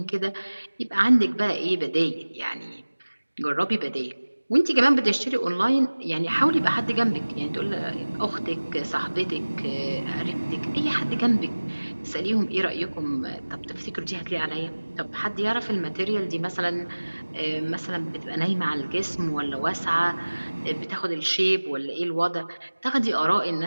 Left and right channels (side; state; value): both; inverted; correlation -1.00